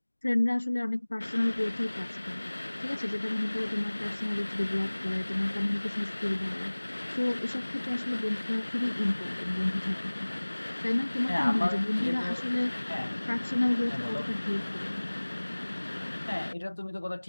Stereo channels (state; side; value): inverted; both; correlation -1.00